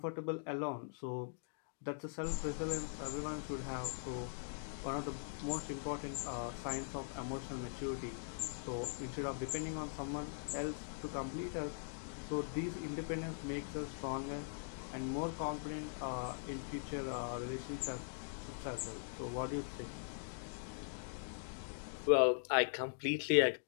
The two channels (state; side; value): silent; right; digital silence